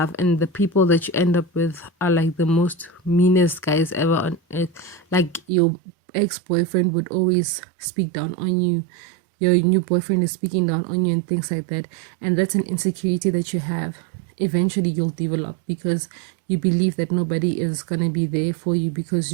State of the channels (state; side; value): drops out; left; at 5.4 s